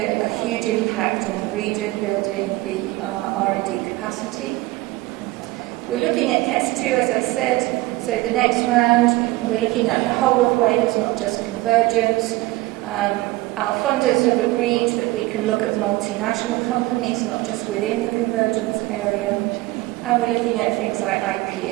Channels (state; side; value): quieter; left; 19.6 dB